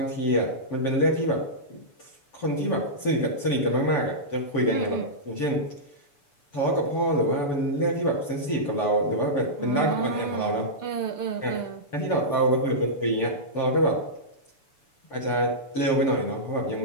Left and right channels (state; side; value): late; right; 6.9 ms